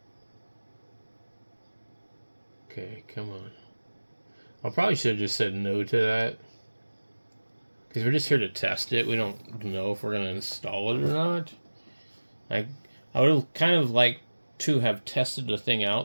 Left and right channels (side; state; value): both; inverted; correlation -1.00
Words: Okay, come on. I probably should have just said no to that. Because we're just here to test it. We don't know if we're gonna install it or not. I would have kind of liked to have tested the thing